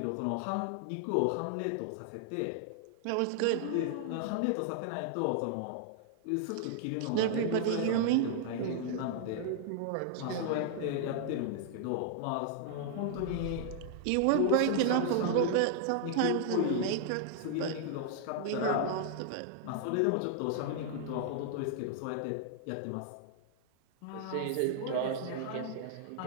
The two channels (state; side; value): different; both; correlation -0.01